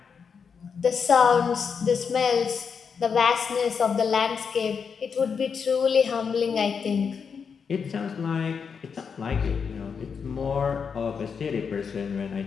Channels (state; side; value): quieter; right; 6.2 dB